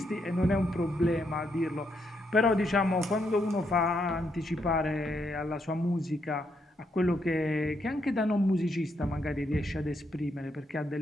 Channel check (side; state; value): both; normal; correlation 0.77